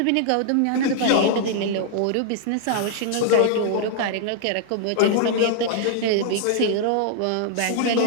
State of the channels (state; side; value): different; both; correlation -0.01